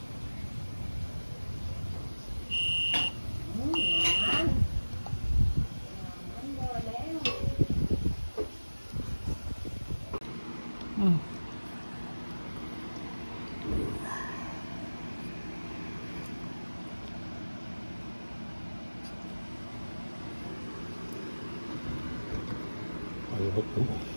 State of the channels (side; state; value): both; inverted; correlation -1.00